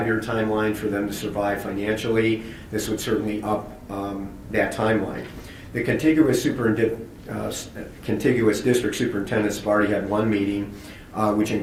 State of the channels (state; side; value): identical; both; correlation 1.00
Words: year timeline for them to survive financially, this would certainly up that timeline. The contiguous district superintendents have already had one meeting, which